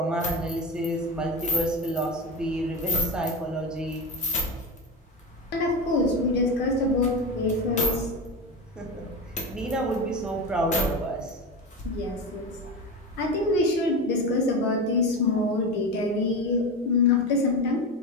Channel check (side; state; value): both; normal; correlation 0.22